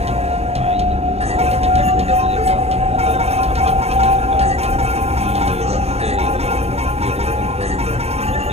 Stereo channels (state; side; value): late; left; 0.30 ms